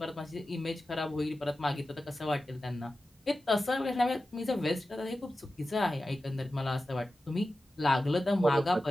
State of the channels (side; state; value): both; normal; correlation 0.94